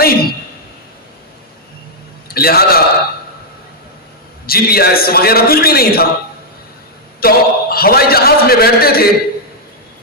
تھی، لہذا جی پی ایس وغیرہ کچھ بھی نہیں تھا، تو ہوائی جہاز میں بیٹھتے تھے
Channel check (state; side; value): normal; both; correlation -0.04